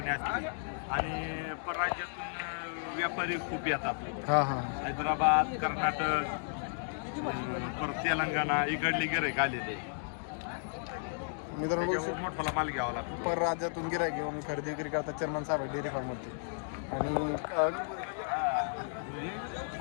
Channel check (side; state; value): right; silent; digital silence